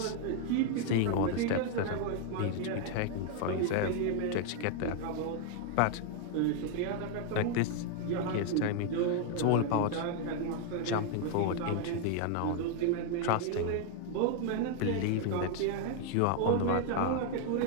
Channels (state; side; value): different; both; correlation 0.00